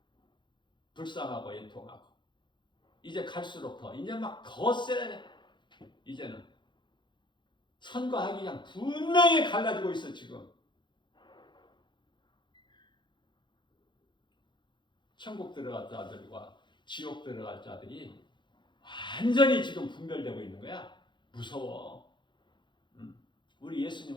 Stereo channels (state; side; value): late; right; 0.23 ms